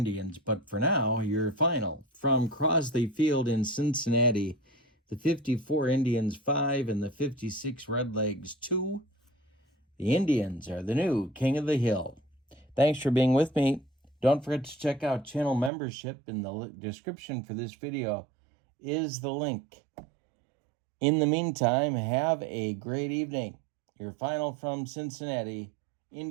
But for now, your final. From Crosley Field in Cincinnati, the 54 Indians 5 and the 56 Redlegs 2. The Indians are the new King of the Hill. Thanks for being with me. Don't forget to check out channel membership. In the description for this video is the link. In the meantime, have a great evening. Your final from Cincinnati.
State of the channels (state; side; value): drops out; left; at 15.7 s